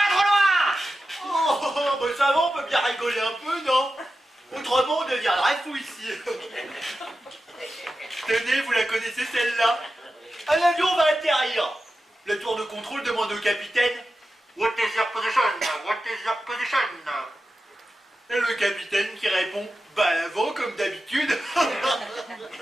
trop loin! Oh, bah ça va, on peut bien rigoler un peu, non? Autrement, on deviendrait fou ici. Tenez, vous la connaissez celle-là? Un avion va atterrir. Le tour de contrôle demande au capitaine: What is your position? What is your position? Et le capitaine qui répond: Bah à l'avant, comme d'habitude.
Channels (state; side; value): normal; both; correlation 0.92